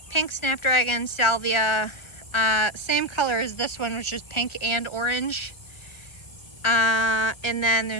pink snapdragon salvia, same color as this one, which is pink and orange. And then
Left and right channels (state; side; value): late; right; 1.3 ms